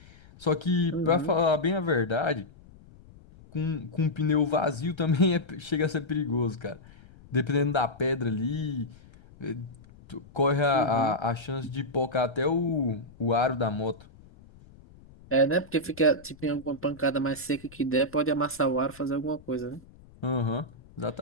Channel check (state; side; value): noise; left; rumble, 23 dB below the sound